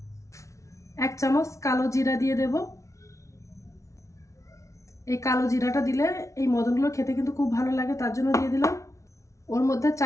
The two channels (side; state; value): right; late; 0.14 ms